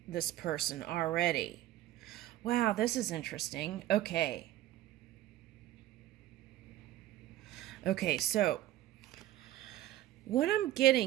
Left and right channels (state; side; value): quieter; left; 14.1 dB